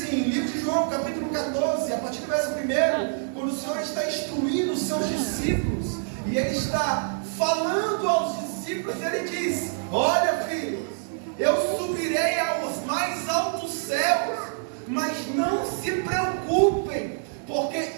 em livro de João, capítulo 14, a partir do verso 1, quando o Senhor está instruindo os seus discípulos, e Ele está falando aos discípulos, Ele diz: olha, filhos, eu subirei aos mais altos céus, mas não se preocupem, porque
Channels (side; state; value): left; silent; digital silence